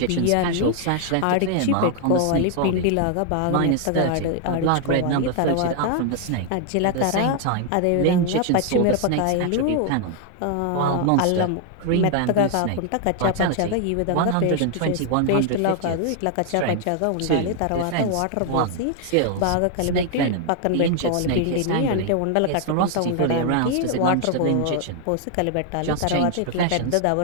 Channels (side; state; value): both; different; correlation 0.00